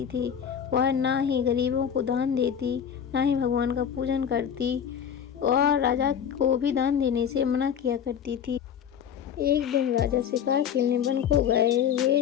थी। वह ना ही गरीबों को दान देती, ना ही भगवान का पूजन करती और राजा को भी दान देने से मना किया करती थी। एक दिन राजा शिकार खेलने वन को गए हुए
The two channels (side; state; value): right; quieter; 8.4 dB